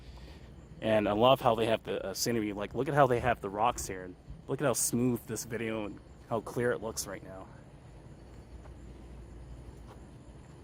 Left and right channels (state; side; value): identical; both; correlation 1.00